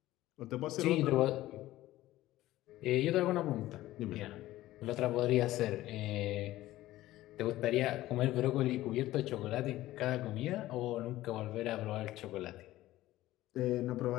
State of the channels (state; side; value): quieter; right; 15.8 dB